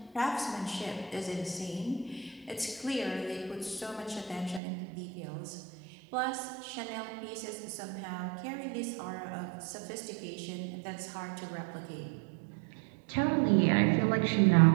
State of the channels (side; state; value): left; drops out; at 4.6 s